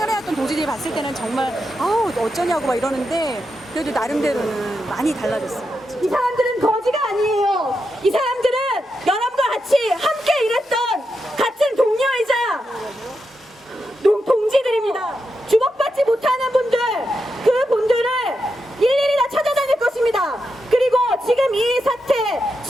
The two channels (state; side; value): normal; both; correlation 0.86